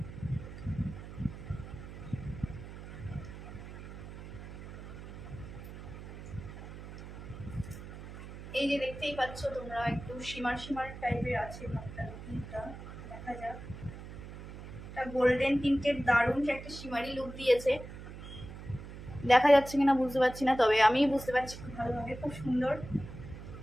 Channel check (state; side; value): noise; right; hum, 12 dB below the sound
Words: এই যে দেখতেই পাচ্ছ তোমরা, একটু শিমার টাইপের আছে ভাবটা, দেখা যাক। একটা গোল্ডেন টিন্টের দারুণ একটা শিমারি লুক দিয়েছে, দেখা যাচ্ছে কিনা বুঝতে পারছি না, তবে আমি বুঝতে পারছি খুব ভালোভাবে, খুব সুন্দর,